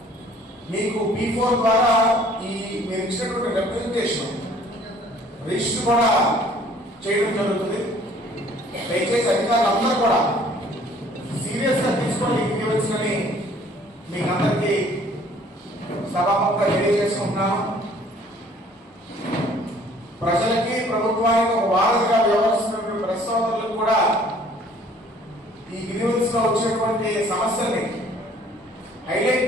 మీకు P4 ద్వారా ఈ మీరు ఇచ్చినటువంటి రిప్రజెంటేషన్ రిజిస్టర్ కూడా చేయడం జరుగుతుంది. దయచేసి అధికారులందరూ కూడా సీరియస్ గా తీసుకొని ఇవ్వవలసిందని మీకు అందరికీ సభాముఖంగా తెలియజేసుకుంటున్నాను. ప్రజలకి ప్రభుత్వానికి ఒక వారధిగా వ్యవహరిస్తున్నటువంటి ప్రెస్ సోదరులకు కూడా ఈ గ్రీవెన్స్ లో వచ్చేటువంటి సమస్యల్ని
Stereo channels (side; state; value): both; normal; correlation 0.56